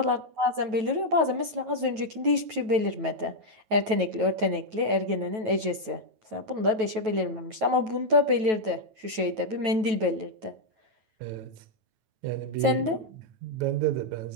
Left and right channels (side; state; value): left; late; 9.2 ms